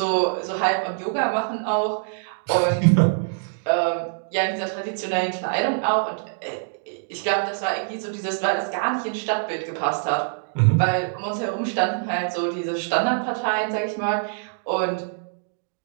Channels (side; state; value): left; silent; digital silence